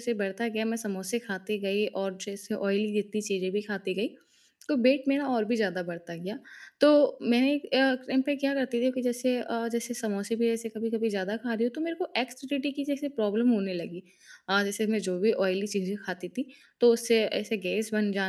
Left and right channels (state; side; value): identical; both; correlation 1.00